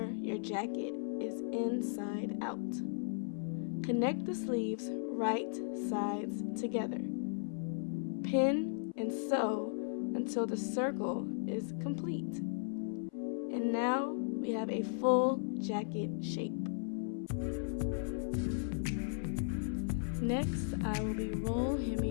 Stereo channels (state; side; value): silent; right; 53 dB below the other